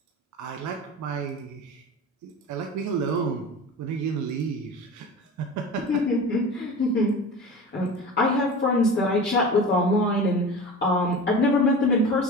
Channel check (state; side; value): normal; both; correlation 0.33